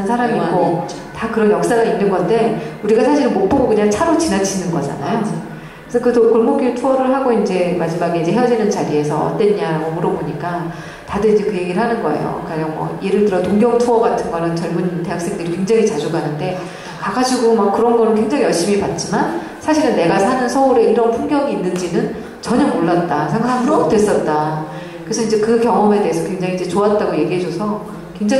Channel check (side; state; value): both; identical; correlation 1.00